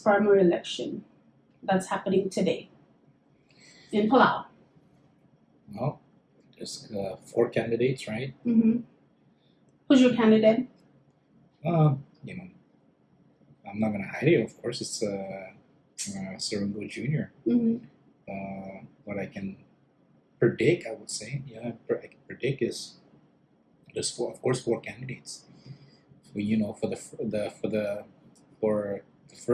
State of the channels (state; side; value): identical; both; correlation 1.00